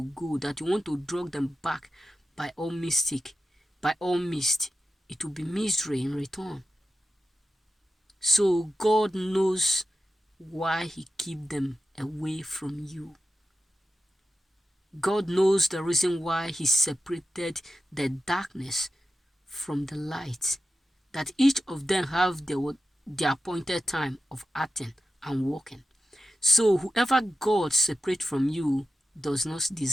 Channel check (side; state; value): both; normal; correlation 0.90